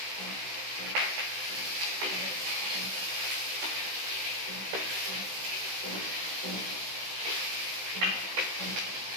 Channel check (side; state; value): left; late; 16 ms